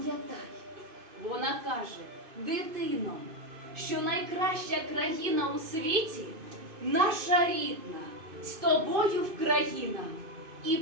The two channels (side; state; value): left; late; 2.5 ms